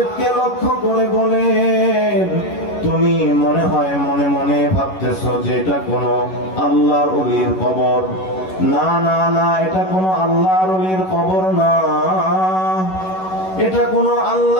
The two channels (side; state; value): right; late; 11 ms